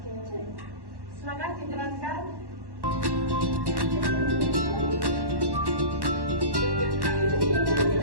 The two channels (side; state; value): left; late; 1.1 ms